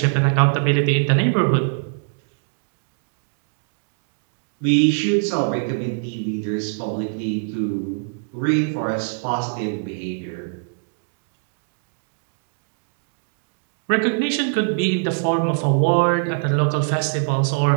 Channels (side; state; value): left; silent; digital silence